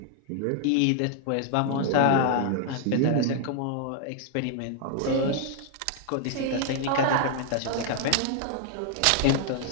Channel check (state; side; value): different; both; correlation 0.00